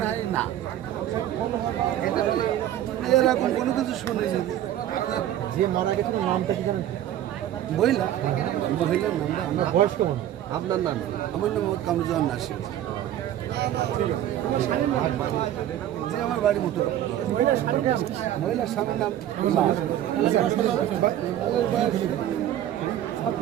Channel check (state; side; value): quieter; left; 11.9 dB